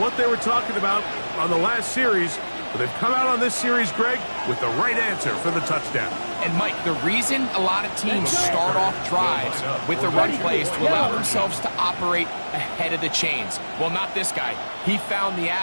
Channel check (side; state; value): both; inverted; correlation -1.00